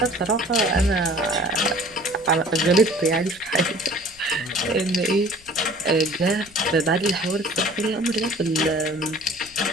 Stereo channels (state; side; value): noise; left; rumble, 26 dB below the sound